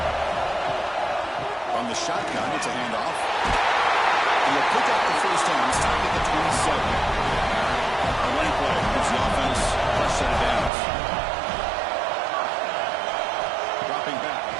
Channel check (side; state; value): left; drops out; at 10.7 s